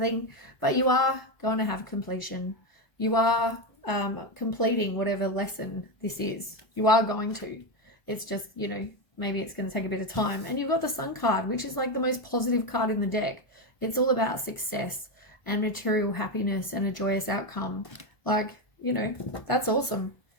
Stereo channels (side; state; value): right; late; 1.3 ms